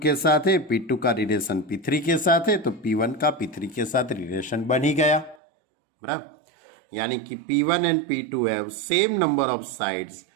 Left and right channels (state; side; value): drops out; left; at 5.4 s